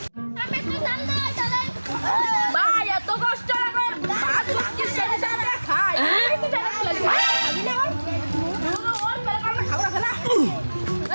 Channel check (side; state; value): both; inverted; correlation -1.00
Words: আমি তো জাননা চলে ভাই এত কষ্ট লাগে ভাত কিসের সাথে খাই আমি তো জানা আমি না ওর মেরে কাম খাওয়া খেলা না